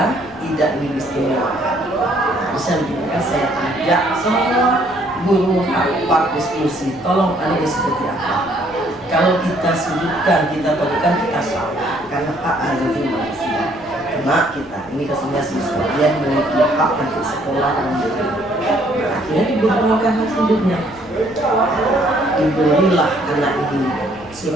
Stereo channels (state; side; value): noise; left; rumble, 23 dB below the sound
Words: tidak didiskriminasikan. Bisa juga saya ajak semua guru rapat diskusi, tolong ini seperti apa. Kalau kita sudutkan, kita berikan, kita salah karena hak asasi manusia. Karena kita ini kesannya siswa dia memiliki hak untuk sekolah dan hidup. Nah, akhirnya diberikan hak hidupnya. Diberilah anak ini